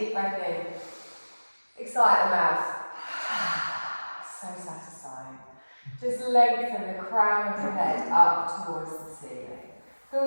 breath in. Big sigh at the mouth. So satisfying. Just lengthen the crown of your head up towards the ceiling.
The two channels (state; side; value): inverted; both; correlation -1.00